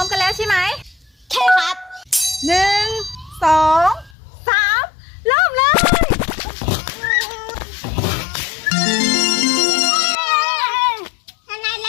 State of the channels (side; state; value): right; drops out; at 4.2 s